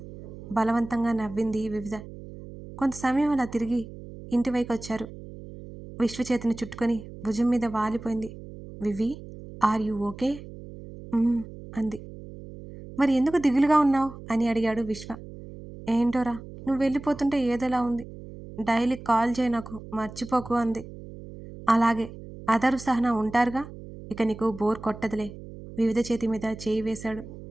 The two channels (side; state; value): right; noise; hum, 14 dB below the sound